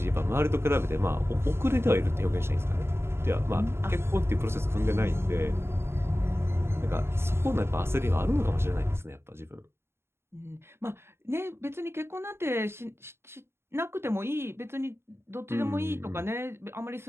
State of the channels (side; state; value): left; late; 0.12 ms